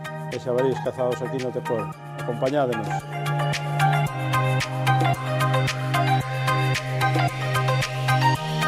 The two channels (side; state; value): both; identical; correlation 1.00